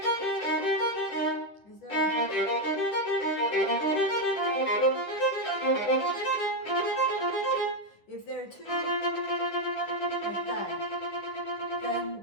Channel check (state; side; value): late; right; 10 ms